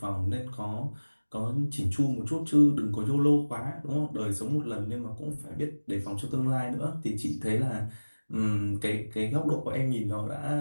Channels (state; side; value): inverted; both; correlation -1.00